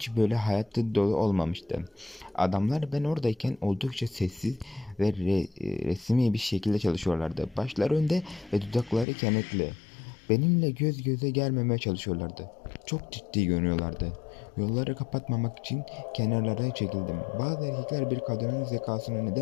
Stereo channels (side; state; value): right; drops out; at 9.1 s